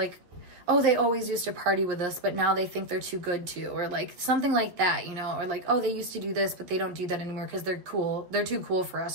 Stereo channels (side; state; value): left; late; 11 ms